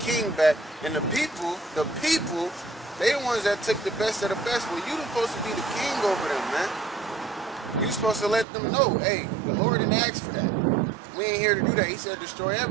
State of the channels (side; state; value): left; drops out; at 8.5 s